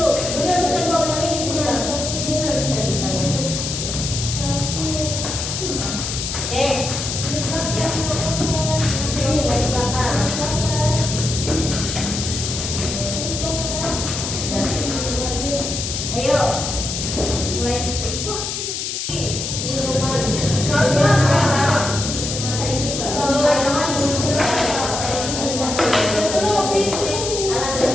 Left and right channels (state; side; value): noise; left; hiss, 4 dB below the sound